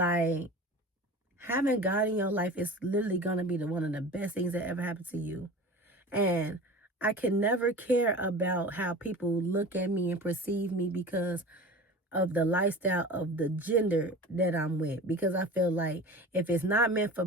having God in your life is literally going to be one of the best things that ever happened to you. And I can never care about how people look at me and perceive me because of the lifestyle of the gender that I'm with, because I feel like if it's not meant for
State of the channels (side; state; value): both; normal; correlation 0.36